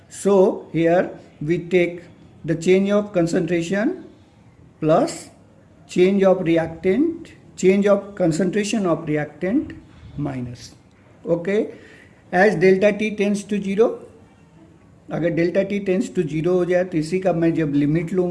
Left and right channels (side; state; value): both; identical; correlation 1.00